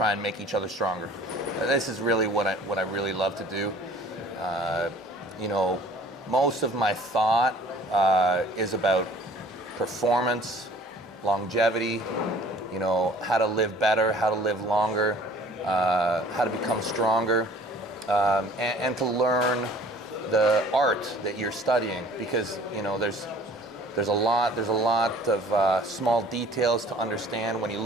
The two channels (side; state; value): both; normal; correlation 0.51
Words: and make each other stronger. This is really what I really love to do. You know, most of my thought is about performance, longevity, you know, how to live better, how to live longer, how to become stronger, and to learn the art that you're studying, because you know there's a lot of small details to understand when you